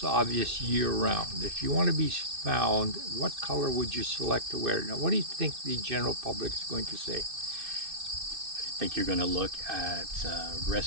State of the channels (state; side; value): late; left; 2.6 ms